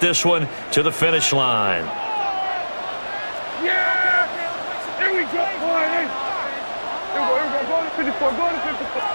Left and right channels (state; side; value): inverted; both; correlation -1.00